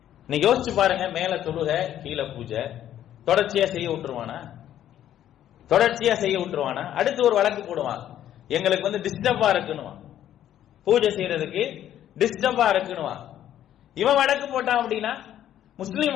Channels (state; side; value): quieter; right; 11.4 dB